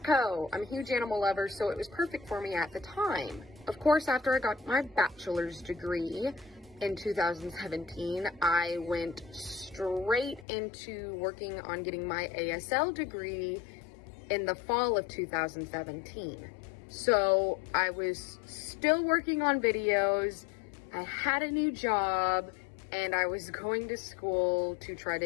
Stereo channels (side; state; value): right; drops out; at 10.5 s